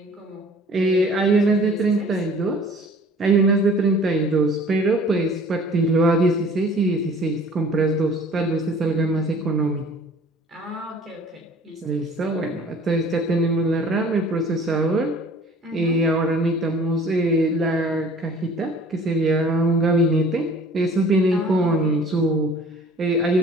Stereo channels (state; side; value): normal; both; correlation 0.50